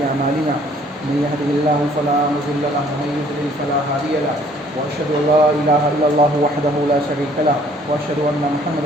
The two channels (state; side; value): normal; both; correlation 0.59